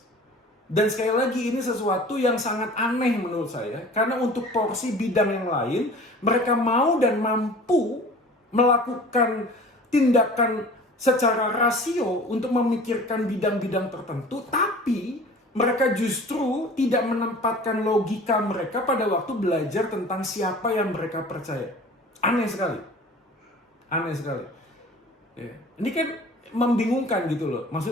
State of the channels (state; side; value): normal; both; correlation 0.43